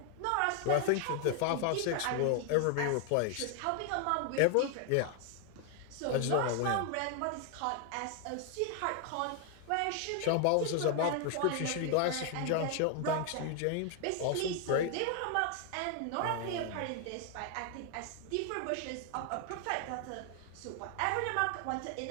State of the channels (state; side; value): different; both; correlation 0.00